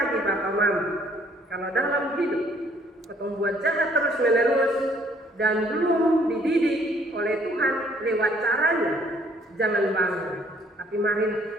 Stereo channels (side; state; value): both; normal; correlation 0.62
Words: Bapak Mama, kalau dalam hidup kita buat jahat terus menerus dan belum dididik oleh Tuhan lewat caranya, jangan bangga, tapi mari